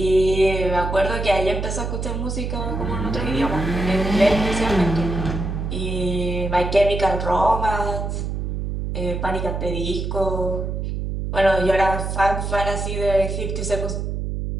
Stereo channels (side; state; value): right; noise; hum, 3 dB below the sound